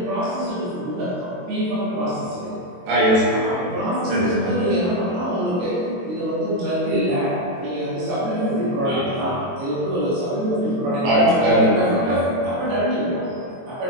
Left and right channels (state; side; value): late; left; 22 ms